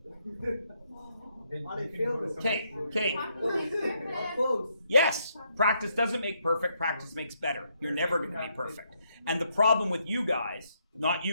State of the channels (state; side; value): inverted; both; correlation -0.75